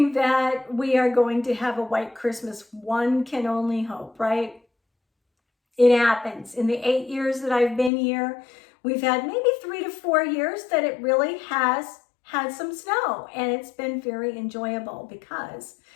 that we are going to have a white Christmas. One can only hope, right? It happens. In the 8 years that I've been here, we've had maybe 3 to 4 years that it really has had some snow, and it's been very enjoyable because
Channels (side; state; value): right; drops out; at 7.9 s